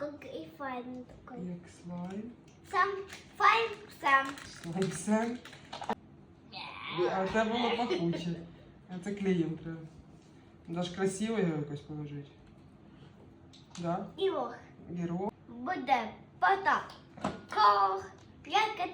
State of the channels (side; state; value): both; identical; correlation 1.00